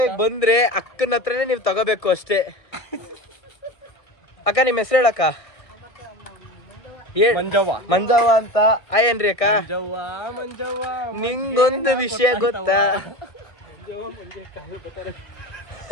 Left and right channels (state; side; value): late; right; 1.6 ms